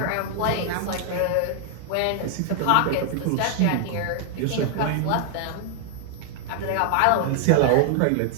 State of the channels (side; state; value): both; different; correlation 0.00